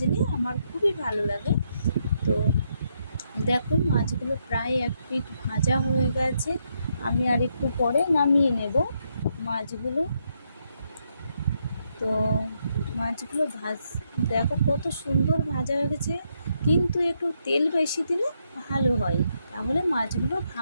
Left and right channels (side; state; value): both; inverted; correlation -0.78